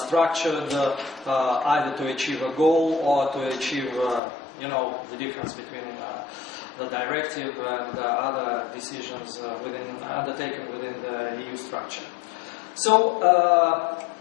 either to achieve a goal or to achieve the difference between the directive and other decisions undertaken within the EU structure. So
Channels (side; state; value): right; drops out; at 4.2 s